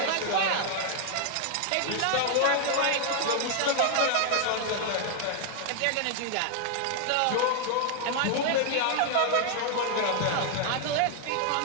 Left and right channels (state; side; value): different; both; correlation 0.00